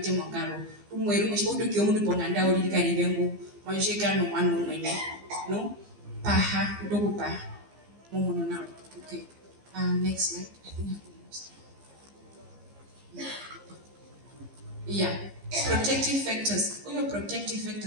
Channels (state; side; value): late; left; 15 ms